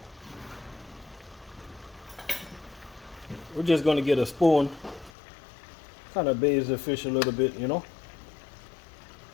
we're just gonna get a spoon, kind of bathe the fish a little bit, you know.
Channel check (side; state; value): right; drops out; at 5.1 s